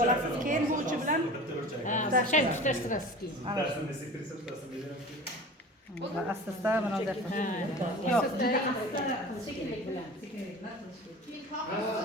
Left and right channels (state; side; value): normal; both; correlation 0.38